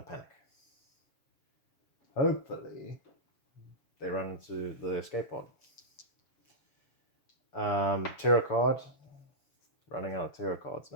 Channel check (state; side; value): late; right; 7.3 ms